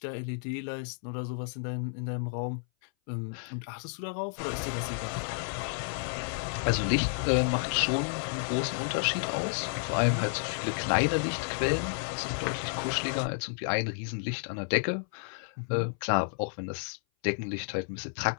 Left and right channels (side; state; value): right; silent; 57 dB below the other